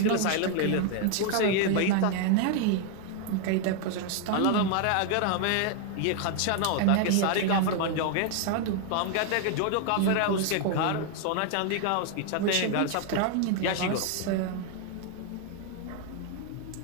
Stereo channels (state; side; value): different; both; correlation 0.00